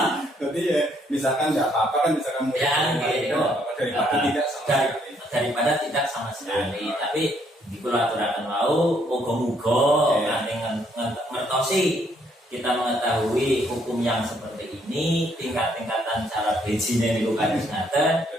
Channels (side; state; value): both; normal; correlation 0.69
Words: Jadi ya misalkan nggak apa-apa kan misalkan Ya, gitu. daripada tidak sama sekali. Daripada tidak sama sekali. Tapi di kula aturaken wau muga-muga kanthi ngertosi kita mengetahui hukum yang seperti ini, tingkat-tingkatan cara bejine niku kados ngaten,